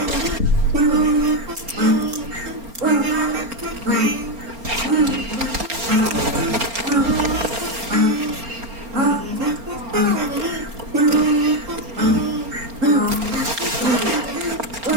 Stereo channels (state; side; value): late; left; 4.3 ms